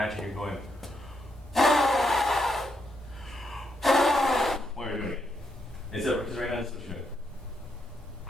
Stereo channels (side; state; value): both; normal; correlation 0.79